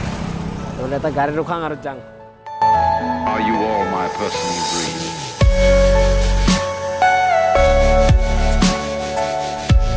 তো এটা গাড়ি ৰখাং আৰু যাং Are you all my personal dreams?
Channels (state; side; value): identical; both; correlation 1.00